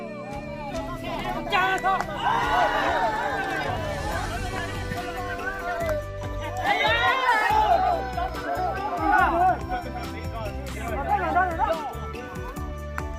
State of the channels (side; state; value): both; identical; correlation 1.00